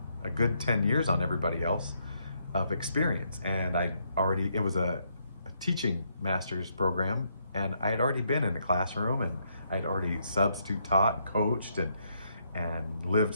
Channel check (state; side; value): inverted; both; correlation -0.75